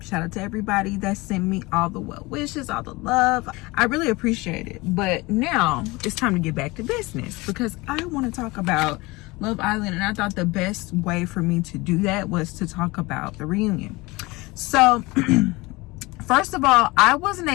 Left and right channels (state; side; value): quieter; right; 22.9 dB